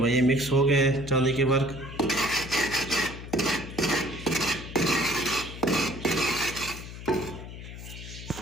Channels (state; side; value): noise; left; hum, 12 dB below the sound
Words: ये मिक्स हो गए हैं चांदी के वर्क।